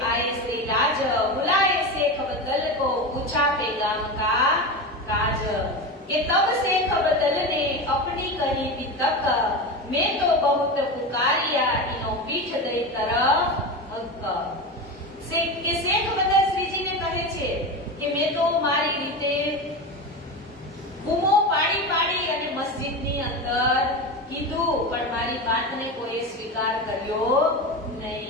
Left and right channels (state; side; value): normal; both; correlation 0.22